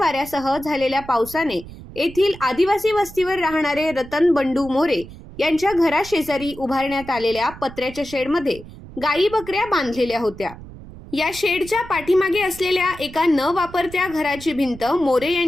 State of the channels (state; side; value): noise; right; rumble, 16 dB below the sound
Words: झालेल्या पावसाने येथील आदिवासी वस्तीवर राहणारे रतन बंडू मोरे यांच्या घराशेजारी उभारण्यात आलेल्या पत्र्याच्या शेडमध्ये गायी बकऱ्या बांधलेल्या होत्या। या शेडच्या पाठीमागे असलेल्या एका न वापरत्या घराची भिंत मोरे